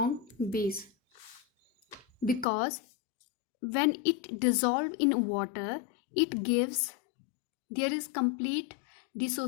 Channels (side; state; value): right; drops out; at 2.5 s